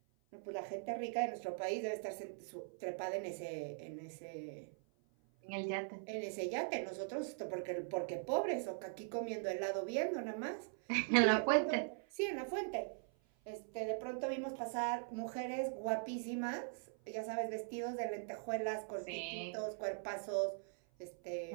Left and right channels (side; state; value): left; silent; 50 dB below the other